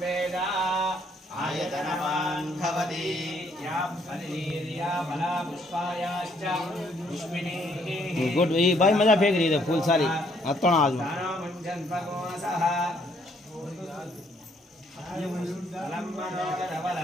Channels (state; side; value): normal; both; correlation 0.67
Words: आयतनवान् भवति या फलिर्या फला पुष्पायाश्च पुष्पिनीः। गुड ये भाई मजा फेंक रही है फूल सारी अतोना आज में मुञ्जन भगवसः